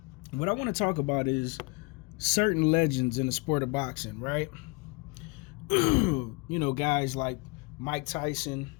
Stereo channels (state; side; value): quieter; right; 28.1 dB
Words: What I want to talk about is certain legends in the sport of boxing, right? Guys like Mike Tyson,